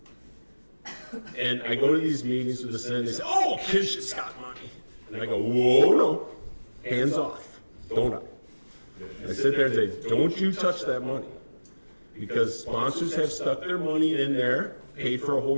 And I go to these meetings with the Senate and they say, oh, kinship's got money. And I go, whoa, no, hands off, don't I? I sit there and say, don't you touch that money. Because sponsors have stuck their money in there, paid for a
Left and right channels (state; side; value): inverted; both; correlation -1.00